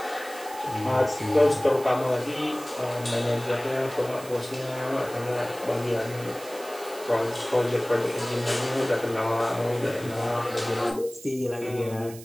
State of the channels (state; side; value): noise; right; hiss, 17 dB below the sound